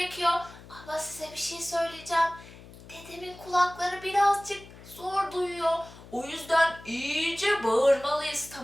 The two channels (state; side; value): noise; left; hum, 19 dB below the sound